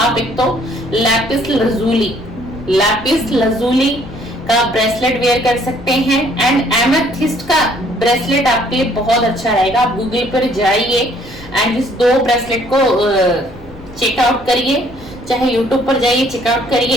एक तो लैपिस लजूली का ब्रेसलेट वेयर कर सकते हैं। एंड एमेथिस्ट का ब्रेसलेट आपके लिए बहुत अच्छा रहेगा। आप गूगल पर जाइए एंड इस दो ब्रेसलेट को चेकआउट करिए, चाहे यूट्यूब पर जाइए चेकआउट करिए,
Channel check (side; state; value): left; noise; rumble, 20 dB below the sound